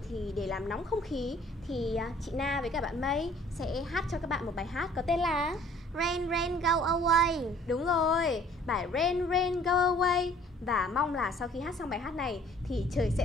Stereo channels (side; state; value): both; normal; correlation 0.55